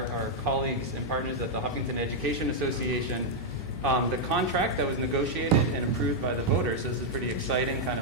colleagues and partners at the Hopkinton Education Association, the contract that was negotiated and approved by the voters. So this is pretty exciting, kind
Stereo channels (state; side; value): normal; both; correlation -0.03